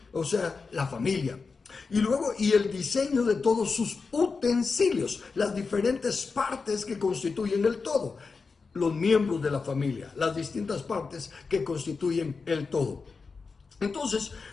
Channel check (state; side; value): quieter; right; 4.6 dB